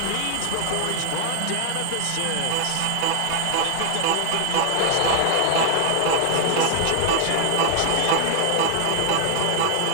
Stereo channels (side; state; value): both; different; correlation 0.00